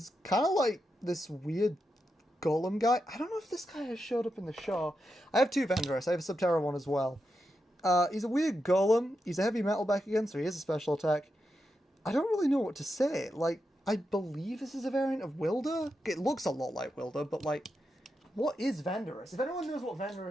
kind of like this weird golem guy. I don't know if this guy has showed up in the show. I have two Vandorus. I have a Subterra one as well. He's a weird golem. He's a heavy metal back again, so he has a special attack. I don't really know what to say. Like, I believe this is a variant of Wilder. It looks a lot like Wilder, but like, what is Vandorus? If anyone knows what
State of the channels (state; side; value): normal; both; correlation 0.87